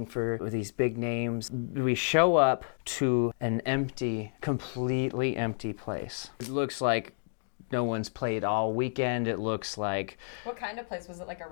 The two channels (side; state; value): right; silent; digital silence